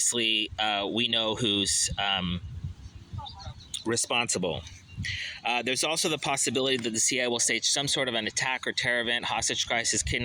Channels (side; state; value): both; identical; correlation 1.00